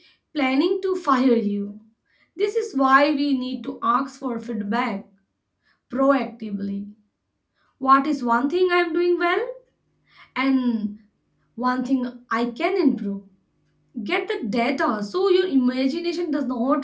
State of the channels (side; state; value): both; identical; correlation 1.00